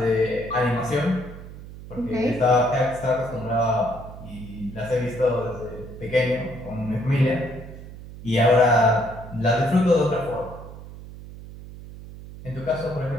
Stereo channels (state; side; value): noise; right; hum, 14 dB below the sound